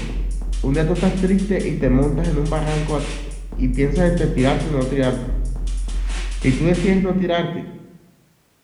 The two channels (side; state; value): both; identical; correlation 1.00